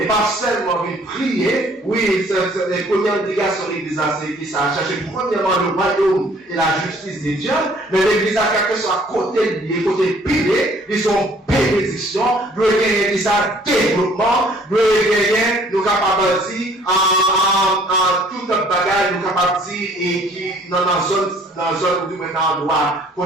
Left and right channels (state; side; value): normal; both; correlation 0.58